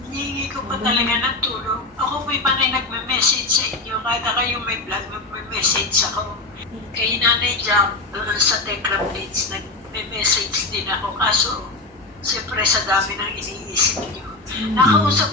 Hihingi ko pa talaga ng tulong. Ako po'y panay nagme-message sa inyo. Kahit ako yung may vlog, nagme-message ako. Kay Nanay Jam, sa Telegram page, nagme-message din ako. Kaso, siyempre sa dami ng iniisip niyo.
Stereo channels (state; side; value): quieter; right; 3.2 dB